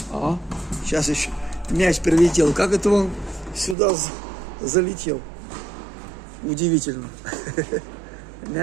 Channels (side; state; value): left; drops out; at 3.8 s